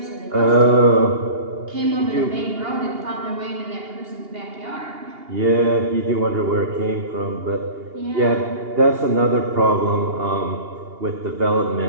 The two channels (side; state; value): left; late; 2.8 ms